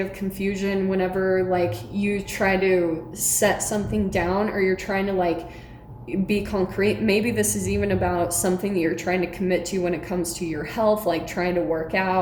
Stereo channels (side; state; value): both; identical; correlation 1.00